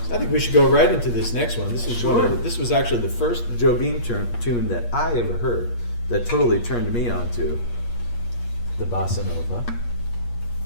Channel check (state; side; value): late; right; 8.4 ms